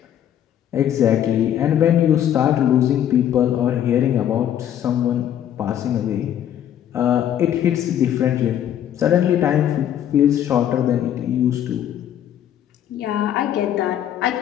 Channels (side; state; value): right; quieter; 10.5 dB